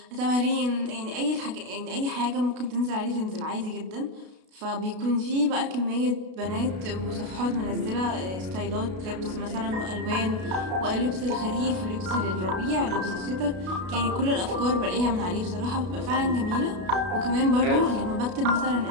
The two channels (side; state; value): left; late; 32 ms